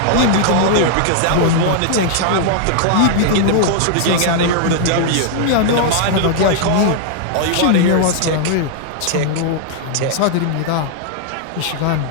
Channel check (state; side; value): different; both; correlation -0.01